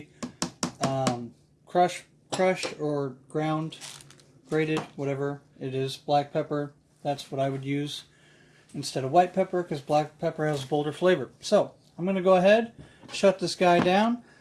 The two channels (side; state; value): both; identical; correlation 1.00